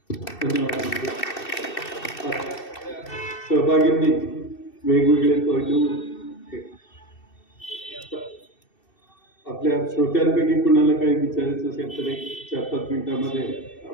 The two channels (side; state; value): right; late; 2.6 ms